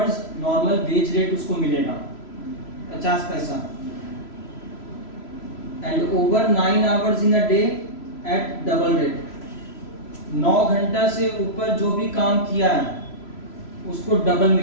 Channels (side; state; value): right; late; 3.0 ms